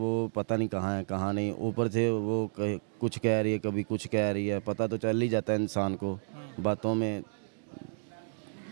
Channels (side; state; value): left; silent; digital silence